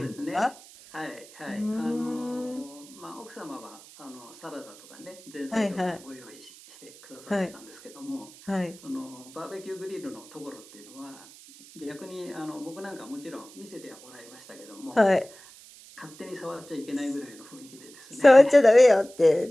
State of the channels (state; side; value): noise; right; hiss, 21 dB below the sound